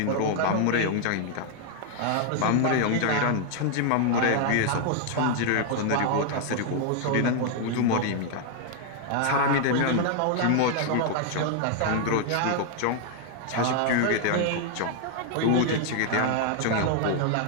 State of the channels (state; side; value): different; both; correlation 0.00